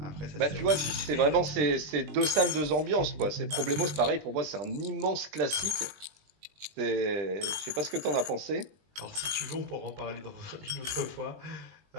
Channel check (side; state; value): left; late; 20 ms